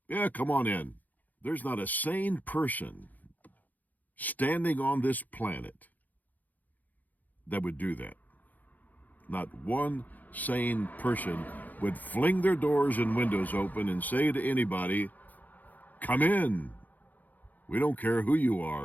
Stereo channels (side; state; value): right; late; 0.082 ms